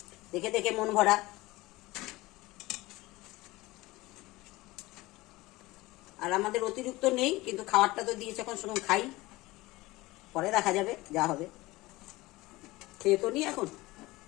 দেখে দেখে মন ভরা। আর আমাদের অতিরিক্ত নেই, কিন্তু খাবারটা তো দিয়েছে, এখন শুনুন খাই, পরে দেখা যাবে যা হবে। খেয়ে তো নি এখন।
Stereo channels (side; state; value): right; quieter; 20.1 dB